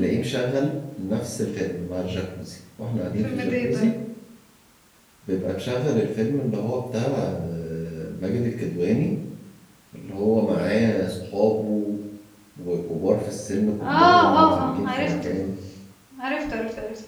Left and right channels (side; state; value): both; identical; correlation 1.00